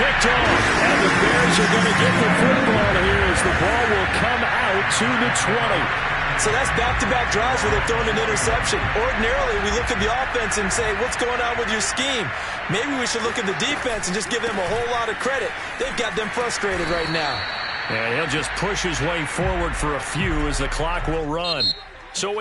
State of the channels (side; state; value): both; identical; correlation 1.00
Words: off. And the Bears are going to get the football here as the ball will come out to the 20. So that's back-to-back drives where they're throwing an interception. Ordinarily, we look at the offense and say, what's going on with your scheme? Maybe we should look at the defense and just give them a whole lot of credit. They've got them frustrated right now. And he'll just push his way forward for a few as the clock will run. So